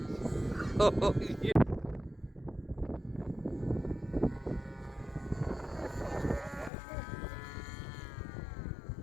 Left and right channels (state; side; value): drops out; right; at 6.7 s